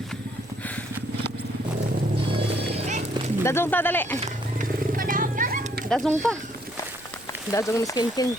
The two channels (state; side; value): noise; right; rumble, 26 dB below the sound